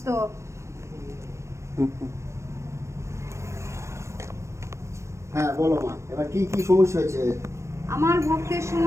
তো? হ্যাঁ বলো মা, এবার কি কি সমস্যা হয়েছে? আমার ভক্তের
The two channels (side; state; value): left; late; 0.14 ms